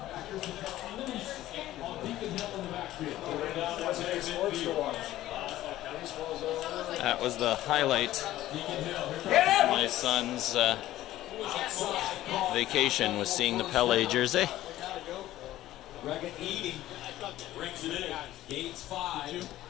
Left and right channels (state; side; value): quieter; right; 14.6 dB